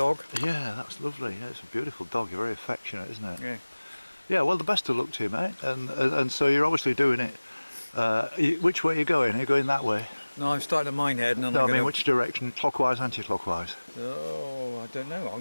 Yeah, that's lovely. Yeah, it's a beautiful dog. You're very affectionate, isn't it? Yeah. Yeah, well, the best of luck to you, mate. And so you're obviously doing it. Which way are you going? Are you going that way? No, I'm starting at Minehead, and then No, I'm I mean, gonna... which direction? Clockwise, anti-clockwise? Oh, I don't know. I'm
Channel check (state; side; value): inverted; both; correlation -1.00